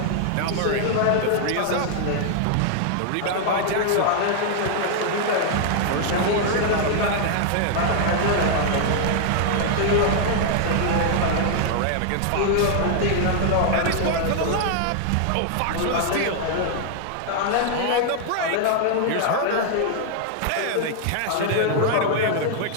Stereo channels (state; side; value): different; both; correlation 0.00